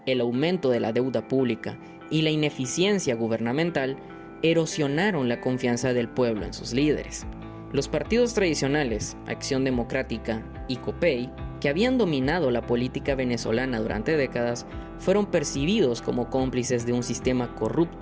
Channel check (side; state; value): both; identical; correlation 1.00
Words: el aumento de la deuda pública y la ineficiencia gubernamental erosionaron la confianza del pueblo en sus líderes. Los partidos tradicionales, Acción Democrática y COPEI, que habían dominado la política venezolana durante décadas, fueron percibidos como cómplices de un sistema